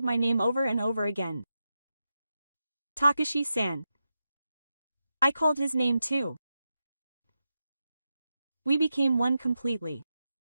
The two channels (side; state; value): both; inverted; correlation -0.89